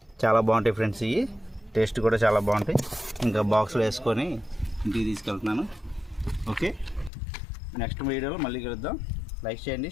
చాలా బాగుంటాయి ఫ్రెండ్స్, ఇవి టేస్ట్ కూడా చాలా బాగుంటాయి. ఇంకా బాక్స్లో వేసుకొని ఇంటికి తీసుకెళ్తున్నాను. ఓకే, నెక్స్ట్ వీడియోలో మళ్ళీ కలుద్దాం. లైక్ చేయండి,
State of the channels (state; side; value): drops out; right; at 7.1 s